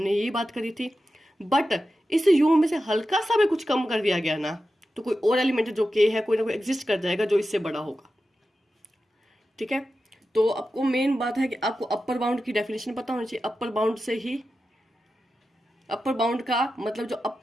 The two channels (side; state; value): both; normal; correlation 0.92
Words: यही बात करी थी। बट इस यू में से हल्का सा भी कुछ कम कर दिया गया ना, तो कोई और एलिमेंट जो के है कोई ना कोई एग्जिस्ट कर जाएगा जो इससे बड़ा होगा। ठीक है, तो आपको मेन बात है कि आपको अपर बाउंड की डेफिनेशन पता होनी चाहिए। अपर बाउंड से ही, अपर बाउंड का मतलब जो